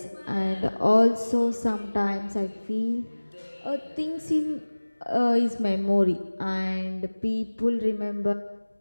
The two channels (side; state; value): both; inverted; correlation -1.00